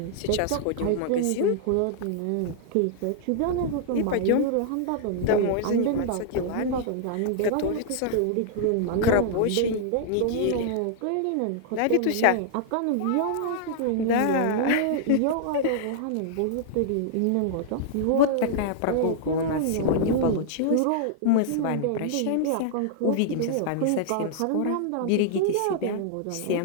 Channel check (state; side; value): different; both; correlation -0.01